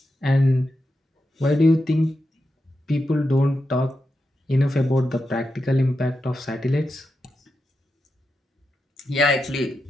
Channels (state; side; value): normal; both; correlation 0.88